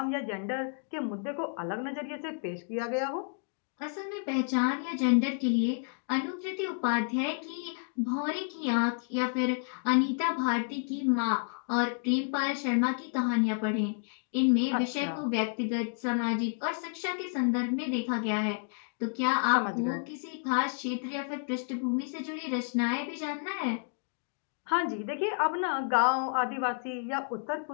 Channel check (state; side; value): silent; right; 57 dB below the other